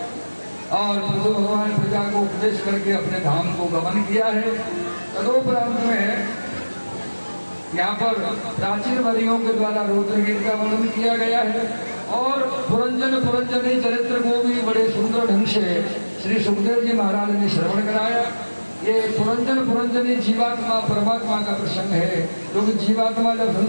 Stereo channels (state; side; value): inverted; both; correlation -1.00